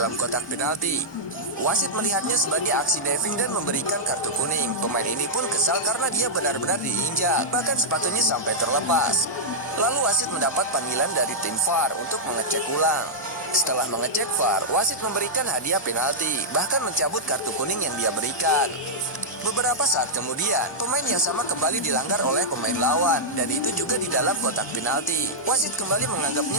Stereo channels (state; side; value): late; right; 1.2 ms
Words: kotak penalti. Wasit melihatnya sebagai aksi diving dan memberikan kartu kuning. Pemain ini pun kesal karena dia benar-benar diinjak, bahkan sepatunya sampai terlepas. Lalu wasit mendapat panggilan dari tim VAR untuk mengecek ulang. Setelah mengecek VAR, wasit memberikan hadiah penalti, bahkan mencabut kartu kuning yang dia berikan. Beberapa saat kemudian, pemain yang sama kembali dilanggar oleh pemain lawan, dan itu juga di dalam kotak penalti. Wasit kembali